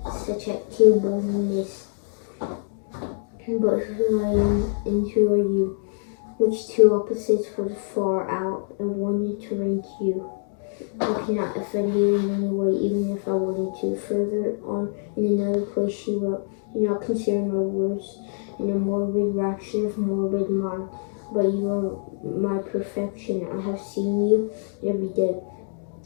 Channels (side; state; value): right; silent; digital silence